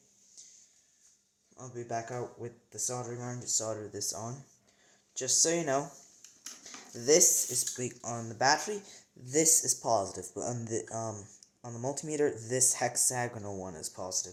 I'll be back out with the soldering iron to solder this on. Just so you know, this is big on the battery, this is positive, but on the multimeter, this hexagonal one is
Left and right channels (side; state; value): both; identical; correlation 1.00